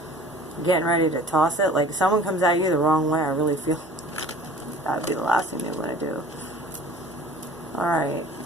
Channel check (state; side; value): normal; both; correlation 0.46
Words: getting ready to toss it, like someone comes at you the wrong way, I really feel that would be the last thing you want to do. Alright,